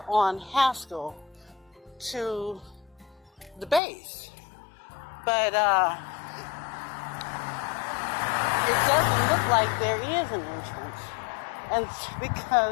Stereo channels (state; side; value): drops out; right; at 3.8 s